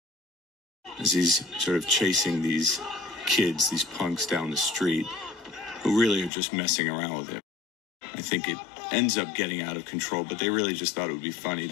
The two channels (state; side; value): drops out; right; at 6.3 s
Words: as he's sort of chasing these kids, these punks down the street, who really are just messing around with him. I think it ends up getting out of control, but they really just thought it would be funny